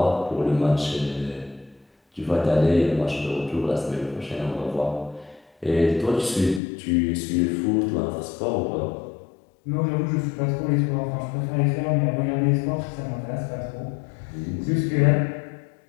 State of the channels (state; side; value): drops out; right; at 6.6 s